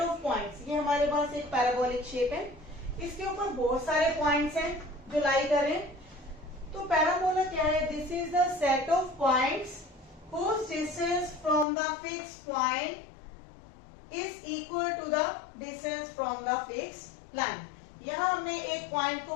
of points. ये हमारे पास एक पैराबोलिक शेप है, इसके ऊपर बहुत सारे पॉइंट्स हैं जो लाई कर रहे हैं। तो पैराबोला क्या है? This is the set of points whose distance from the fixed point is equal to the distance from the fixed line। यहाँ हमने एक पॉइंट को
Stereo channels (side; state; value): right; drops out; at 11.7 s